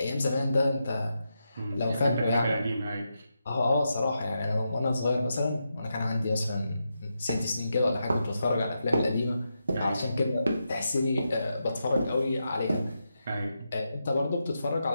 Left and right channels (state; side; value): inverted; both; correlation -0.86